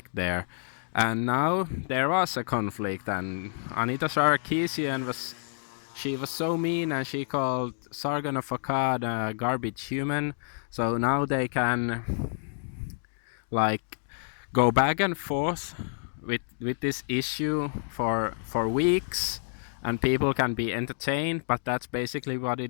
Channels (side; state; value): right; silent; digital silence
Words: there. And now there was a conflict, and Anita Sarkeesian was so mean, and she called Sargon of Akkad a garbage human. So now they can like go back and forth with this issue for weeks, and people can be entertained, but that's basically what it